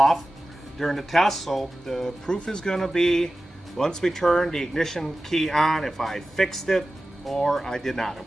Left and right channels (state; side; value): normal; both; correlation 0.95